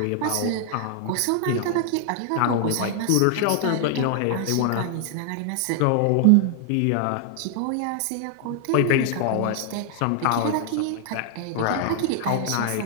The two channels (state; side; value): different; both; correlation 0.00